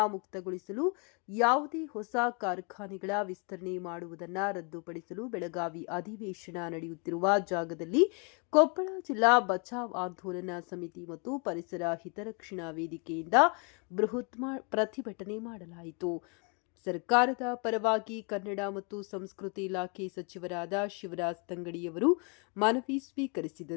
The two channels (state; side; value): quieter; right; 35.2 dB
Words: ಮುಕ್ತಗೊಳಿಸಲು ಯಾವುದೇ ಹೊಸ ಕಾರ್ಖಾನೆಗಳ ವಿಸ್ತರಣೆ ಮಾಡುವುದನ್ನು ರದ್ದುಪಡಿಸಲು ಬೆಳಗಾವಿ ಅಧಿವೇಶನ ನಡೆಯುತ್ತಿರುವ ಜಾಗದಲ್ಲಿ ಕೊಪ್ಪಳ ಜಿಲ್ಲಾ ಬಚಾವ್ ಆಂದೋಲನ ಸಮಿತಿ ಮತ್ತು ಪರಿಸರ ಹಿತರಕ್ಷಣಾ ವೇದಿಕೆಯಿಂದ ಬೃಹತ್ ಪ್ರತಿಭಟನೆ ಮಾಡಲಾಯಿತು. ಸರ್ಕಾರದ ಪರವಾಗಿ ಕನ್ನಡ ಮತ್ತು ಸಂಸ್ಕೃತಿ ಇಲಾಖೆ ಸಚಿವರಾದ ಶಿವರಾಜ್ ತಂಗಡಿಯವರು ಮನವಿ